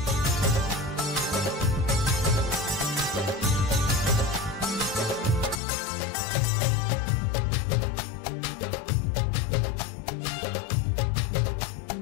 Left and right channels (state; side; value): drops out; right; at 5.6 s